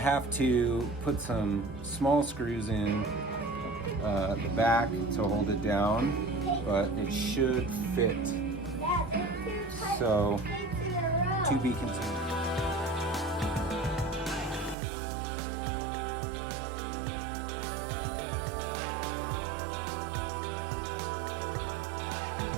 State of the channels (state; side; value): drops out; left; at 14.8 s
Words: to put some small screws in the back to hold it down, but it should fit. So, to be continued.